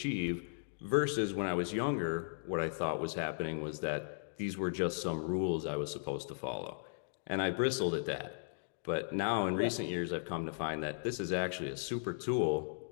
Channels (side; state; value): right; silent; digital silence